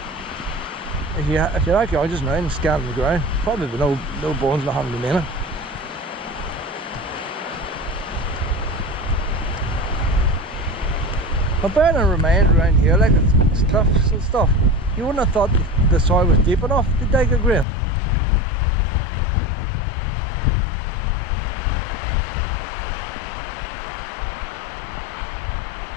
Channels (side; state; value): right; drops out; at 17.7 s